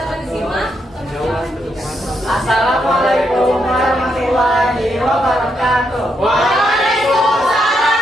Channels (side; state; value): both; normal; correlation 0.79